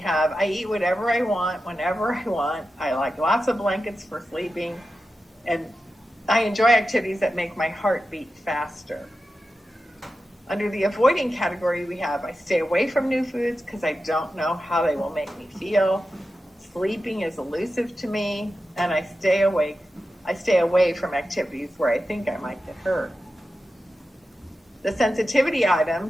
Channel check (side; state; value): both; normal; correlation 0.91